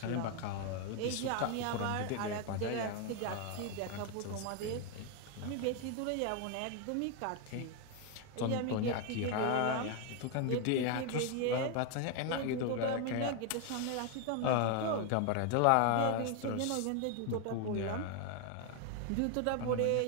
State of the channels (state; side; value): different; both; correlation 0.01